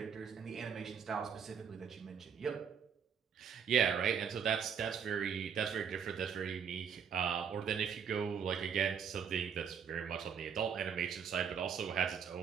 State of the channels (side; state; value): left; quieter; 7.3 dB